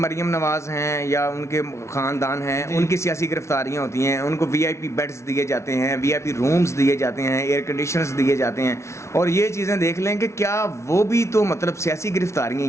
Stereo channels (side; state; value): right; late; 0.13 ms